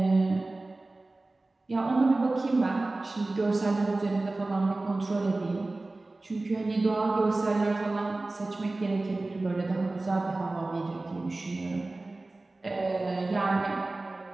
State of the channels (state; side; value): quieter; left; 3.1 dB